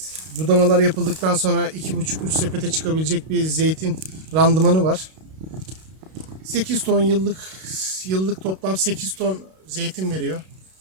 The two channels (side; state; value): left; late; 32 ms